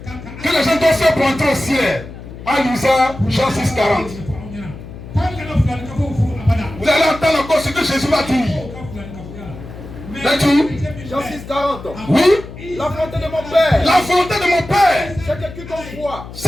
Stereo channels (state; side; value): noise; left; hum, 13 dB below the sound